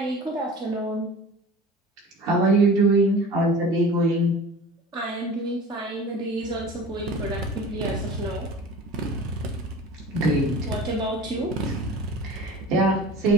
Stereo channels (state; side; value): normal; both; correlation 0.39